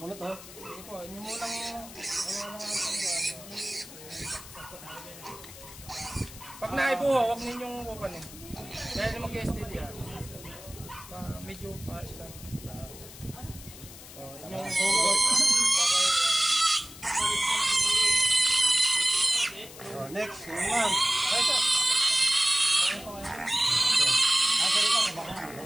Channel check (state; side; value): noise; left; hiss, 16 dB below the sound